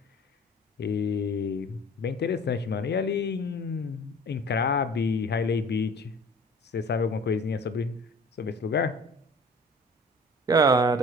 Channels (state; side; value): normal; both; correlation 0.45